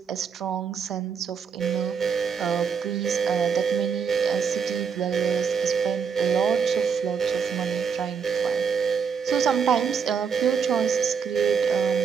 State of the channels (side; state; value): left; quieter; 6.5 dB